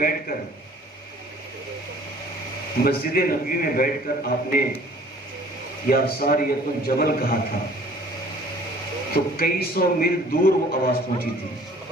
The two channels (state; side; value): normal; both; correlation 0.52